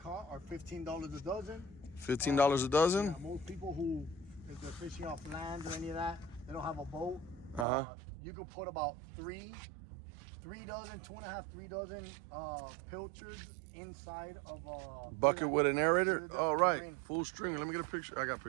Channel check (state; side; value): drops out; left; at 7.7 s